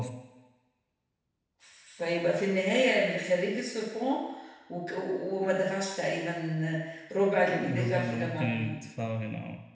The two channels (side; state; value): both; identical; correlation 1.00